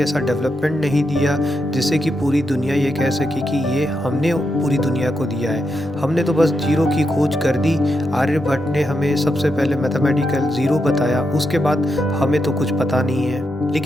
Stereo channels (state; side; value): normal; both; correlation 0.84